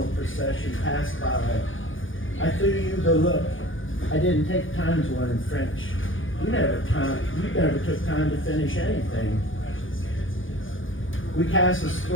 procession pass by. I threw you the look. I didn't take time to learn French. You never took time to finish anything. We cast a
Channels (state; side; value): late; right; 0.58 ms